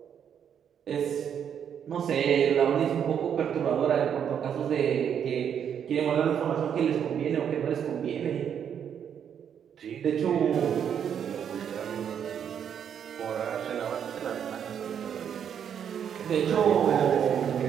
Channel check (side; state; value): left; quieter; 8.4 dB